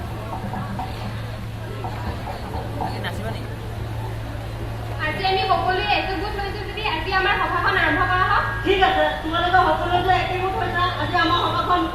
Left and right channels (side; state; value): both; identical; correlation 1.00